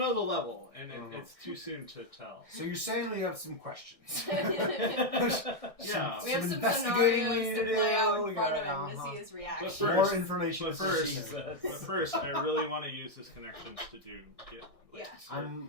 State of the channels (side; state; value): right; late; 1.6 ms